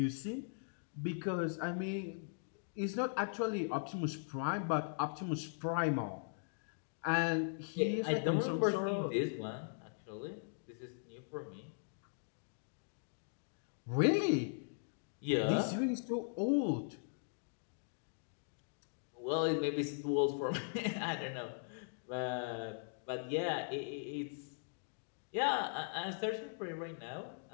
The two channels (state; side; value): silent; right; digital silence